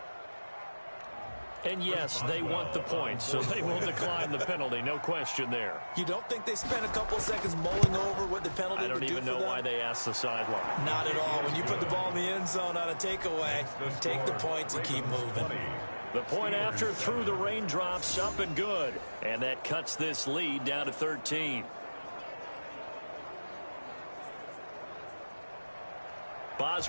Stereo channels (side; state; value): both; inverted; correlation -1.00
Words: And yes, they want the points, so they will decline the penalty. No question there. You don't think they spent a couple seconds mulling over what the penalty would do for them? I don't even know why they asked the sideline. Not at all. When you put the ball in the end zone on a takeaway, take the points and keep moving. The point after through the raindrops, up and good. And that cuts this lead down to 13.